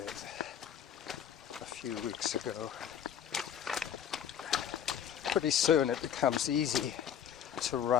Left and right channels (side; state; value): right; quieter; 9.1 dB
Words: a few weeks ago. Pretty soon it becomes easy to